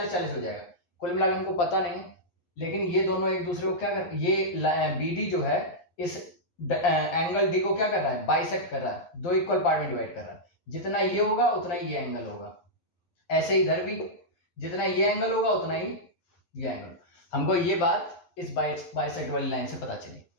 हो जाएगा। कुल मिलाकर हमको पता नहीं है, लेकिन ये दोनों एक दूसरे को क्या कर, ये BD जो है इस एंगल D को क्या कर रहा है? बाइसेक्ट कर रहा है, दो इक्वल पार्ट में डिवाइड कर रहा है। जितना ये होगा उतना ही ये एंगल होगा। ऐसे इधर भी जितना ये एंगल होगा उतना ही ये एंगल। हमको ये बात इस बाइसेक्ट वाली लाइन से पता चली,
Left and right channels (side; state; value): right; late; 11 ms